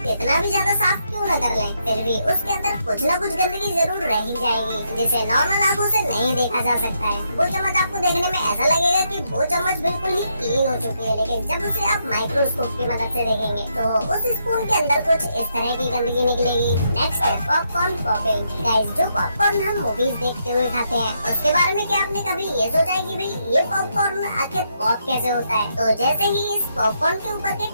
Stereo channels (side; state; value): both; inverted; correlation -0.78